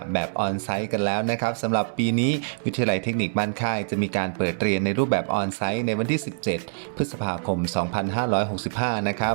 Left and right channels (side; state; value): left; silent; digital silence